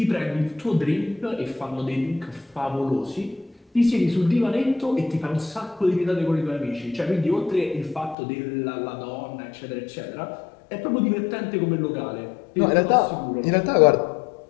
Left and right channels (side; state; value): right; drops out; at 8.2 s